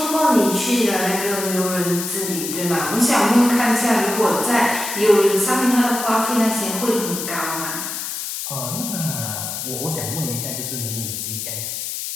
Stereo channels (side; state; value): left; noise; hiss, 5 dB below the sound